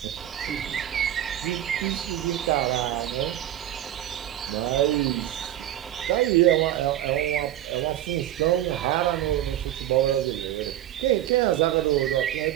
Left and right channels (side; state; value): left; quieter; 12.8 dB